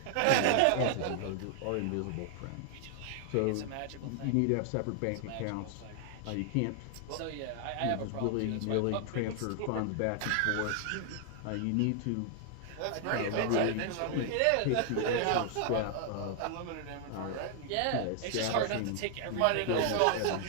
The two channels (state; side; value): different; both; correlation 0.00